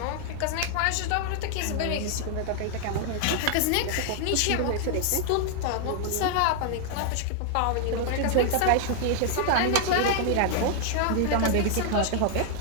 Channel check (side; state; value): both; different; correlation 0.00